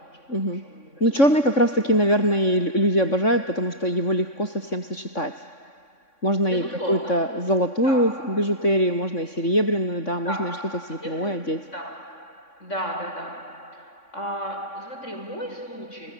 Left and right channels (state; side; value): late; right; 3.6 ms